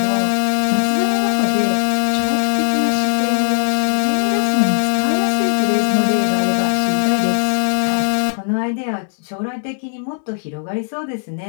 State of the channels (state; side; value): silent; right; digital silence